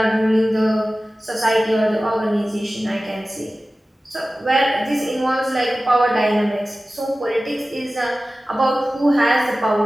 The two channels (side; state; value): both; normal; correlation 0.96